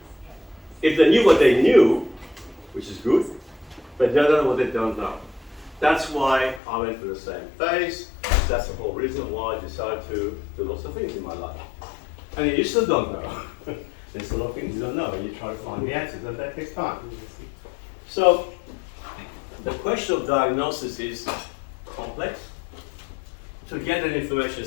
If they knew what they knew, which is good, but they don't know what they don't know. That's why I went through the same phase. That's the whole reason why I decided to do lots of things in my life. And you still don't know. There's a lot of things you don't know, and you try to find the answers, and that takes time. So, the question of diagnosis is complex. To get that information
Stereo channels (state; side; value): drops out; right; at 6.6 s